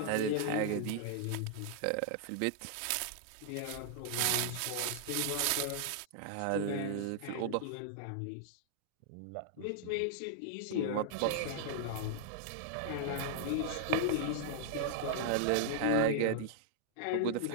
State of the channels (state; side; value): different; both; correlation -0.01